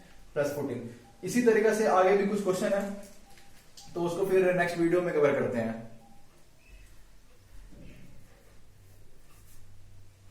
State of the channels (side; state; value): both; identical; correlation 1.00